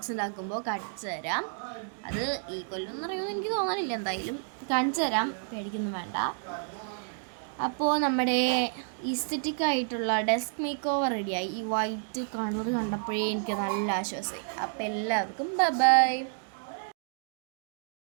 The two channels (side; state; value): left; silent; digital silence